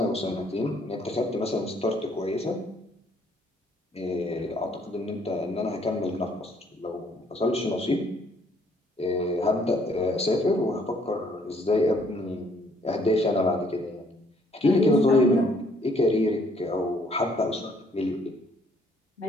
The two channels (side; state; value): both; normal; correlation 0.65